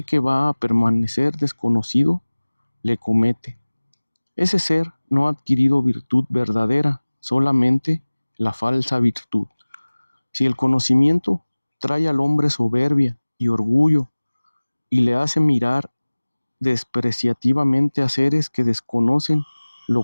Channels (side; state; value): both; inverted; correlation -1.00